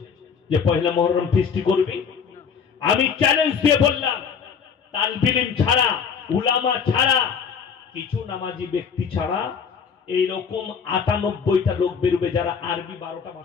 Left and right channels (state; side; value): quieter; right; 6.4 dB